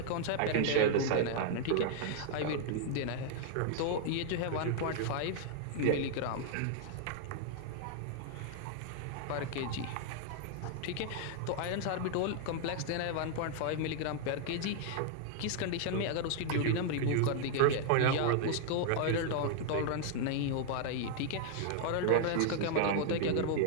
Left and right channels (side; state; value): both; different; correlation 0.00